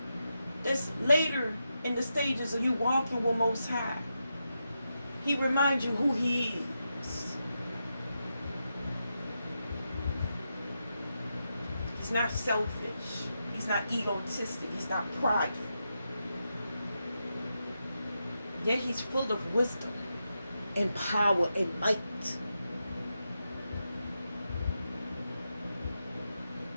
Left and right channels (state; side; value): inverted; both; correlation -0.87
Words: That's later in the stages of you walking with Most High. He reminds you who He is. He's not selfish. He's not egotistic. He's not prideful. Yet He's full of wisdom and power and might.